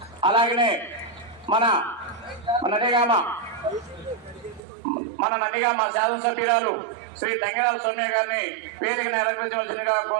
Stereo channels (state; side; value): drops out; left; at 4.6 s